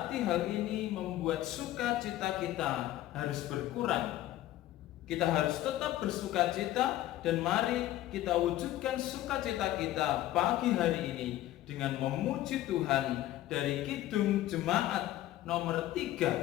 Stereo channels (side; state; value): right; quieter; 14.5 dB